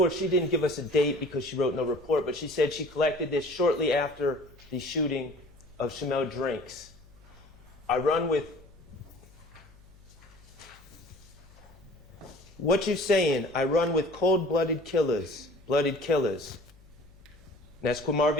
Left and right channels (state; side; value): noise; left; hum, 25 dB below the sound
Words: she didn't give us a date because she wrote no report, but she said she collected this shortly after the shooting of Shymel Drinks. I run with... What you saying? I run with cold-blooded killers. Blooded killers. And that's